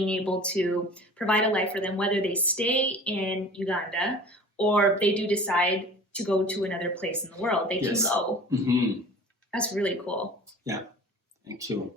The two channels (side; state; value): both; normal; correlation 0.42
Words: able to provide a life for them, whether they stay in Uganda or they do decide to go to another place in the world, they can go. That's really cool. Yeah. Thank you.